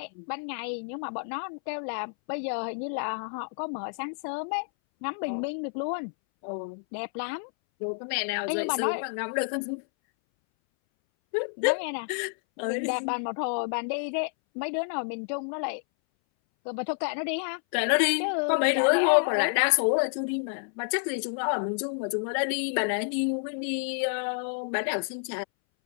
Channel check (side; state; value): right; silent; 58 dB below the other